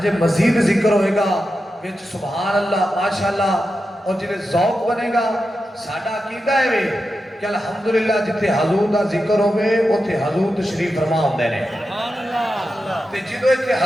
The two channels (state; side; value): normal; both; correlation 0.90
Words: مزید ذکر ہوئے گا وچ سبحان اللہ ماشاءاللہ، اور جنہیں ذوق بنے گا ساڈا عقیدہ ہے وے کہ الحمدللہ جتے حضور دا ذکر ہوئے اوتھے حضور تشریف فرما ہوندے نے۔ تے جدو ایتھے